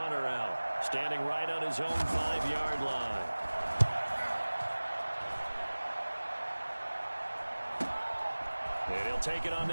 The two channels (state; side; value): inverted; both; correlation -1.00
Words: out, standing right on his own 5-yard line. And he'll take it on